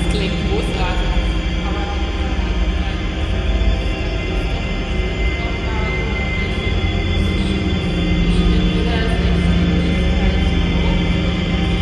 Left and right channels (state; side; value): identical; both; correlation 1.00